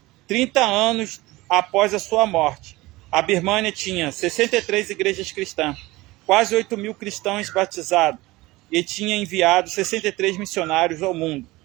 30 anos após a sua morte, a Birmânia tinha 63 igrejas cristãs, quase 8.000 cristãos batizados e tinha enviado 63 missionários ao mundo,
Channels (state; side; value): quieter; left; 20.2 dB